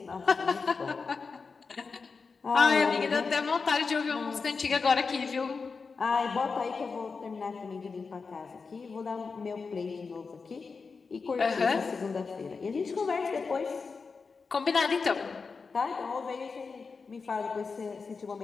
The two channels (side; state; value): right; quieter; 4.8 dB